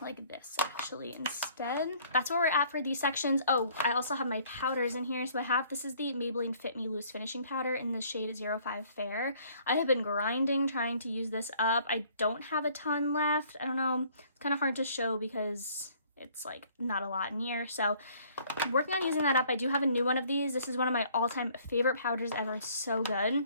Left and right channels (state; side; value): inverted; both; correlation -0.59